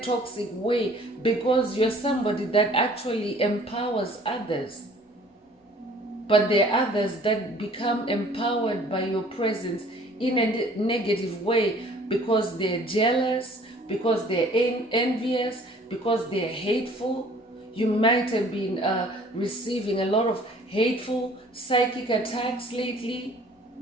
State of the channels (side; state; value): both; normal; correlation 0.53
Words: way, because you're somebody that actually empowers others. But there are others that become empowered by your presence in a negative way, because they're jealous, because they're envious, because they're hateful. You might have been receiving a lot of hateful psychic attacks lately.